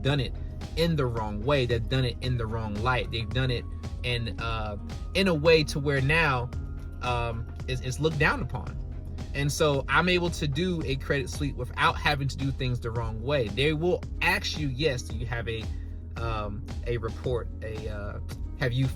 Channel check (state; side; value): identical; both; correlation 1.00